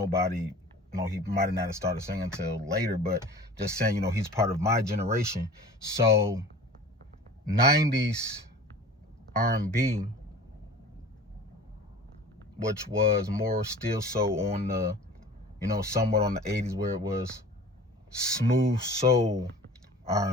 you know, he might have not started singing until later, but just saying, you know, he's part of my generation. So 90s R&B, which was more still so on the, you know, somewhat on the 80s, where it was smooth soul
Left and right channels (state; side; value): normal; both; correlation 0.40